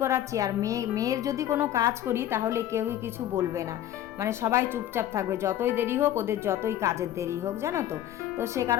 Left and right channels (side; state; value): right; quieter; 12.1 dB